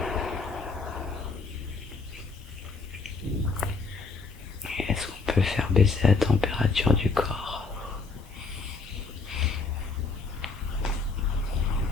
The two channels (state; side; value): quieter; right; 4.4 dB